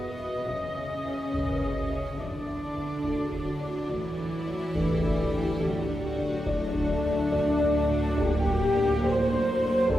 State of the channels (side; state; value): both; normal; correlation 0.89